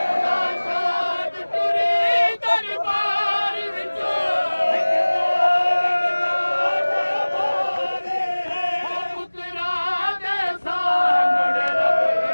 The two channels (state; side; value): inverted; both; correlation -1.00